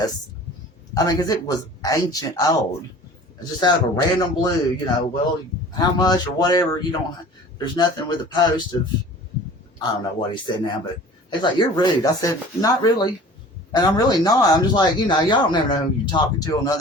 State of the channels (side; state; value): both; normal; correlation 0.44